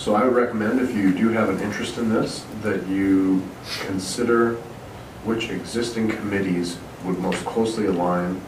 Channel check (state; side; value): identical; both; correlation 1.00